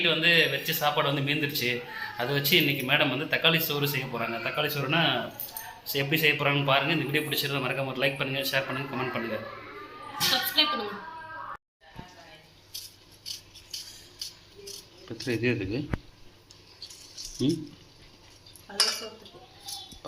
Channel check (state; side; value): identical; both; correlation 1.00